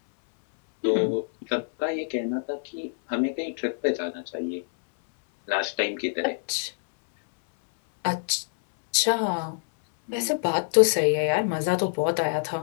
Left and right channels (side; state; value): right; silent; 61 dB below the other